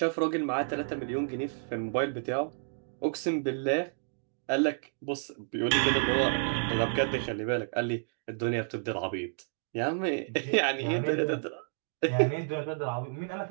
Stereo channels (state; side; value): silent; left; digital silence